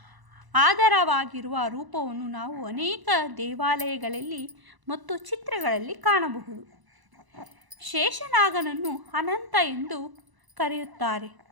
ಆಧಾರವಾಗಿರುವ ರೂಪವನ್ನು ನಾವು ಅನೇಕ ದೇವಾಲಯಗಳಲ್ಲಿ ಮತ್ತು ಚಿತ್ರಗಳಲ್ಲಿ ಕಾಣಬಹುದು. ಶೇಷನಾಗನನ್ನು ಅನಂತ ಎಂದು ಕರೆಯುತ್ತಾರೆ.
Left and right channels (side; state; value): left; late; 1.0 ms